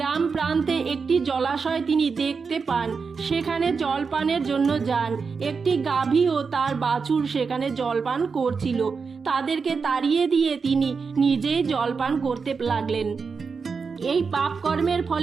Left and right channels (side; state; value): left; quieter; 5.2 dB